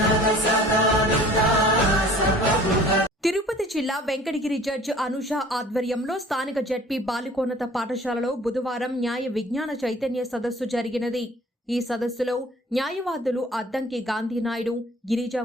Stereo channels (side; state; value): both; normal; correlation 0.49